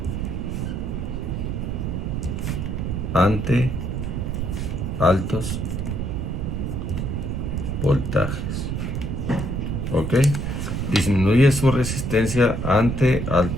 ante altos voltajes, ¿ok? Disminuye su resistencia ante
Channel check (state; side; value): noise; right; rumble, 2 dB below the sound